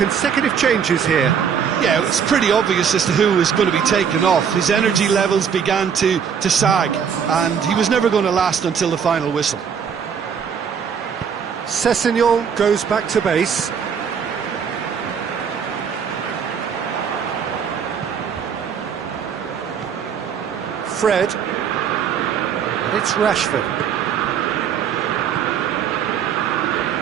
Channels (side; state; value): left; quieter; 7.3 dB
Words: changes here. Yeah, it's pretty obvious as to who was going to be taken off. His energy levels began to sag, and he was never going to last until the final whistle. Sessegnon goes back to base. Fred. And it's Rashford.